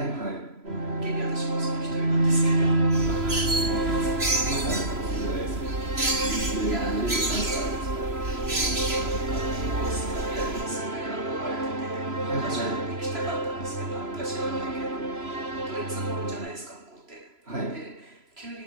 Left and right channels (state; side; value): late; left; 3.0 ms